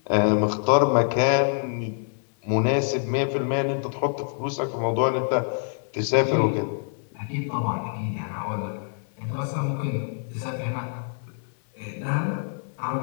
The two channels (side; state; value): right; silent; digital silence